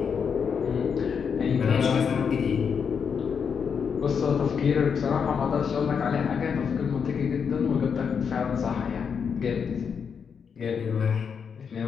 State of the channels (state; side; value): quieter; right; 6.6 dB